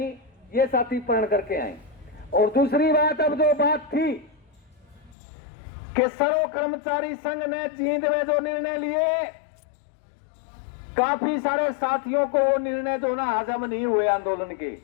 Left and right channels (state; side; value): drops out; right; at 5.2 s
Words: ये साथी प्रण करके आए। और दूसरी बात, अब जो बात थी कि सर्व कर्मचारी संघ ने जींद में जो निर्णय लिए, काफी सारे साथियों को वो निर्णय जो ना हजम नहीं हुए आंदोलन के,